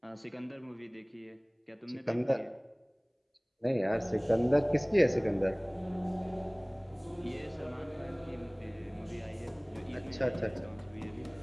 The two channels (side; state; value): both; identical; correlation 1.00